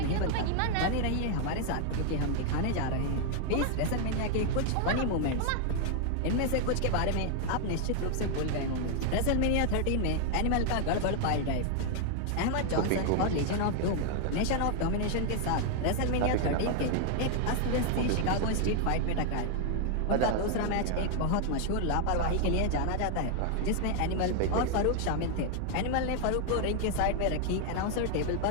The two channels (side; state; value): both; different; correlation 0.00